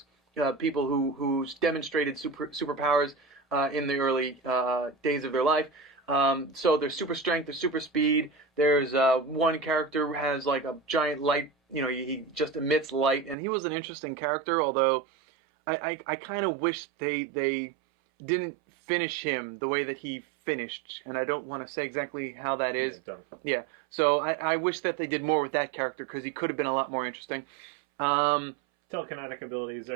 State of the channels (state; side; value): drops out; left; at 13.4 s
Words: People who demonstrated superpowers in the early days of their life. So there's super strength, there's super speed. There's one character who has like a giant light, he just emits light. And he was an interesting character, although I kind of wish they didn't finish him the way that he finished. And I don't want to say exactly how that is. Yeah, don't. Yeah, so I wish that they did more with that character because he could have been a lot more interesting. Telekinetic abilities